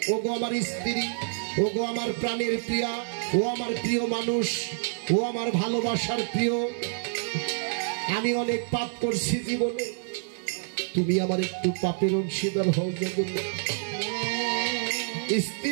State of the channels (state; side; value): silent; left; digital silence